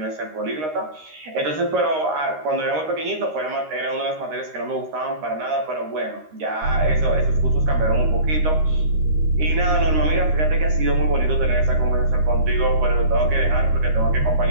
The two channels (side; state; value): left; late; 13 ms